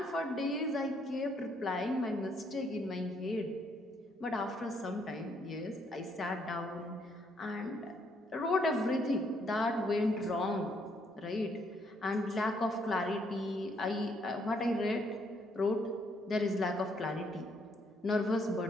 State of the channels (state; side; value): normal; both; correlation 0.71